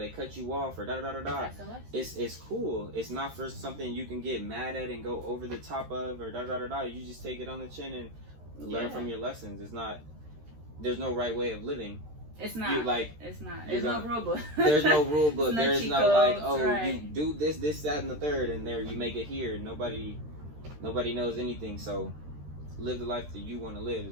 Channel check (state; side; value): late; left; 13 ms